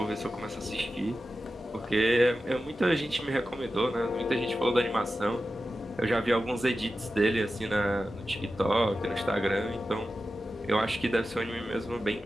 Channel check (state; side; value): normal; both; correlation 0.93